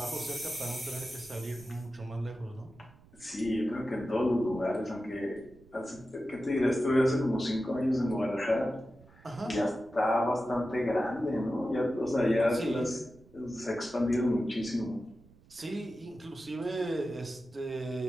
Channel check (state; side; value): noise; right; rumble, 25 dB below the sound